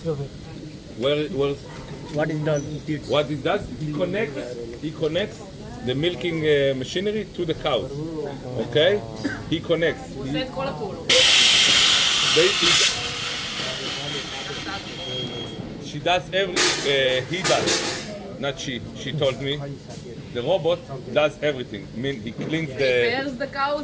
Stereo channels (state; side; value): identical; both; correlation 1.00